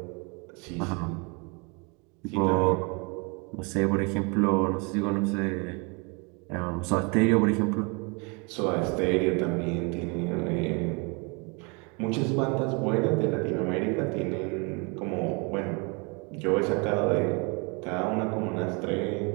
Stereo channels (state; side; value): quieter; left; 31.5 dB